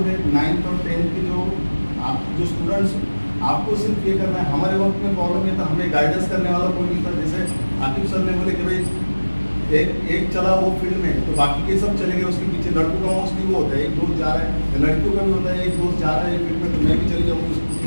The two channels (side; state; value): both; inverted; correlation -1.00